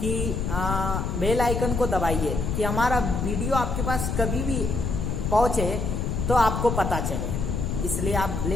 बेल आइकन को दबाइए कि हमारा वीडियो आपके पास कभी भी पहुंचे तो आपको पता चले। इसलिए आप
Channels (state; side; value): noise; left; rumble, 1 dB below the sound